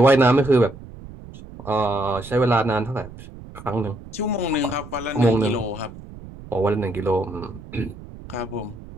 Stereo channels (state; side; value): noise; right; rumble, 16 dB below the sound